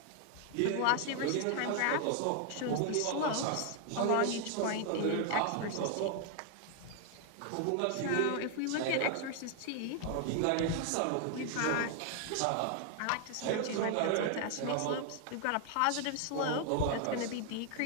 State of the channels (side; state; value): both; different; correlation 0.00